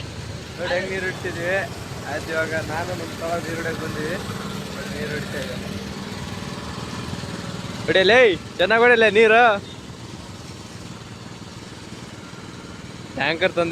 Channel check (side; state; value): both; identical; correlation 1.00